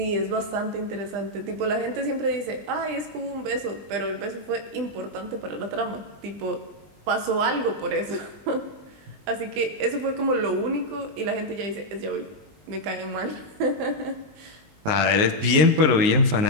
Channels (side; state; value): left; late; 19 ms